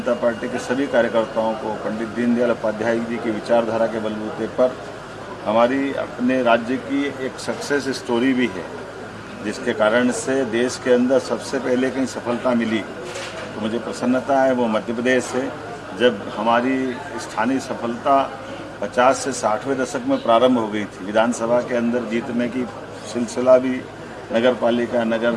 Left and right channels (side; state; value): both; identical; correlation 1.00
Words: पार्टी के सभी कार्यकर्ताओं को पंडित दीनदयाल उपाध्याय जी की विचारधारा के बलबूते पर हमारी अपने राज्य की एक सक्सेस स्टोरी भी है, जिसके कारण से देश के अंदर सबसे पहले कहीं सफलता मिली तो मुझे प्रसन्नता है वो मध्य प्रदेश से, जब हमारी स्थानीय सफलता 50 से 60वें दशक में प्रारंभ हो गई थी। विधानसभा के अंदर जीतने की सिलसिला भी नगर पालिका, नगर